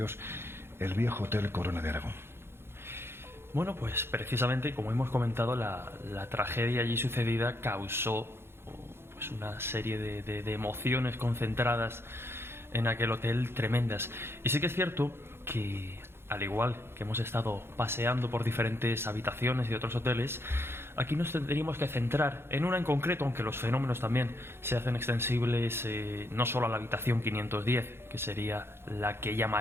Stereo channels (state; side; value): late; left; 0.12 ms